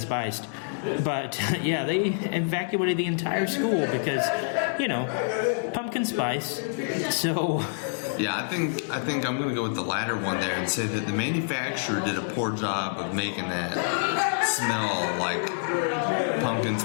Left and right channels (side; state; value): right; silent; digital silence